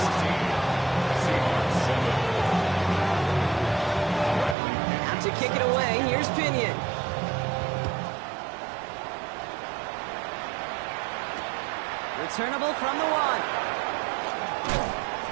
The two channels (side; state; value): left; drops out; at 4.5 s